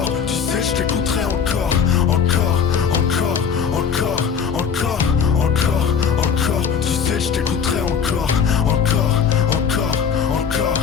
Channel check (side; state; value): right; quieter; 6.9 dB